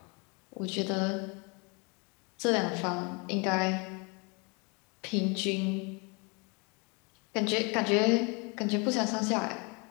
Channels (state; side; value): quieter; right; 31.2 dB